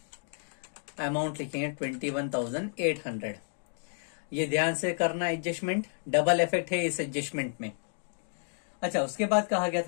अमाउंट लिखेंगे 21,800। ये ध्यान से करना एडजस्टमेंट, डबल इफेक्ट है इस एडजस्टमेंट में। अच्छा, उसके बाद कहा गया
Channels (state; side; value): silent; right; digital silence